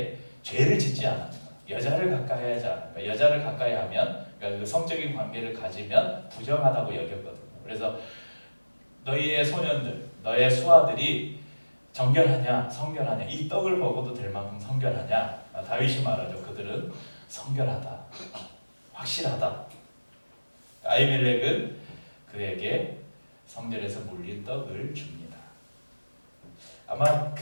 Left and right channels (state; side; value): inverted; both; correlation -1.00